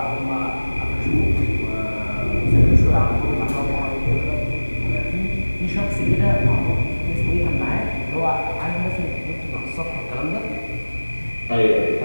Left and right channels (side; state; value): both; inverted; correlation -1.00